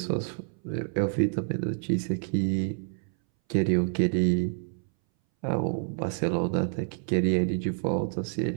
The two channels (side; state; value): left; silent; 59 dB below the other